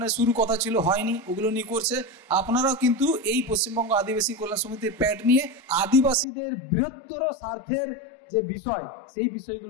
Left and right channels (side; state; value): right; drops out; at 6.2 s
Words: শুরু কথা ছিল, হয়নি, ওগুলো নিয়ে করছে। আপনারাও কিন্তু এই পশ্চিমবঙ্গ আদিবাসী কল্যাণ সমিতির প্যাড নিয়ে আদিবাসীদের বৃহত্তর স্বার্থের যে বিষয়, সেই